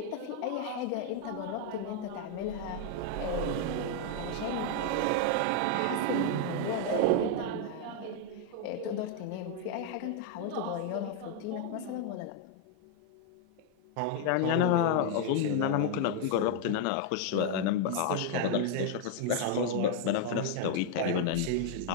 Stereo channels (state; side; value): different; both; correlation 0.00